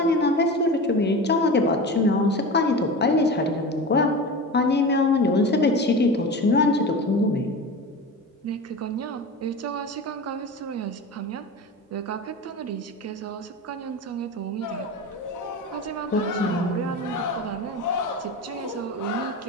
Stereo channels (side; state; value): both; normal; correlation 0.29